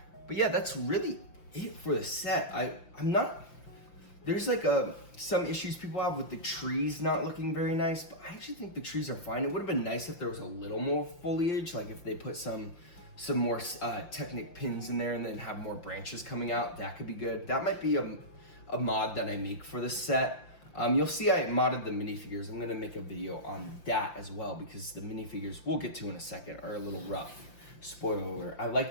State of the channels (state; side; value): late; right; 5.8 ms